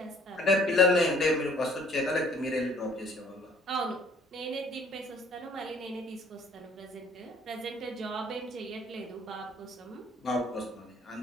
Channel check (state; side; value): normal; both; correlation 0.57